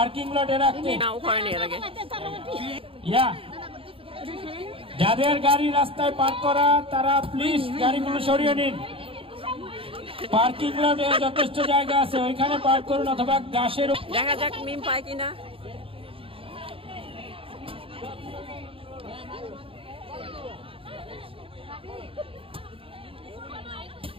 লটে রাখতে। যাদের গাড়ি রাস্তায় পার্ক করা তারা প্লিজ গাড়িগুলো সরিয়ে নিন। পার্কিং লটে যথেষ্ট জায়গা আছে, ওইখানে পার্ক করুন, অথবা গাছের। দেখা যাক মিম পায় কিনা।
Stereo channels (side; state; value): left; late; 0.27 ms